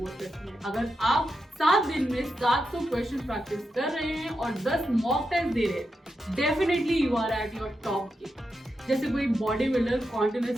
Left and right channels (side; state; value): both; normal; correlation 0.87